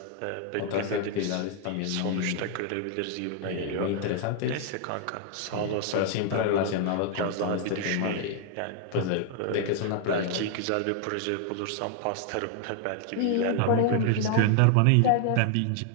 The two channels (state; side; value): different; both; correlation 0.00